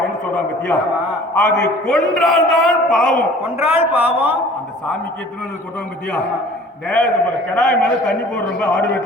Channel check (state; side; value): normal; both; correlation 0.48